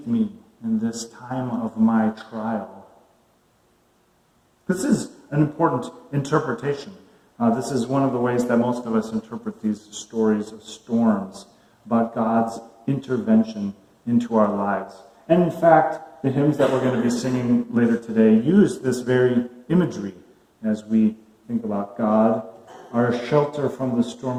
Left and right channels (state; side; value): identical; both; correlation 1.00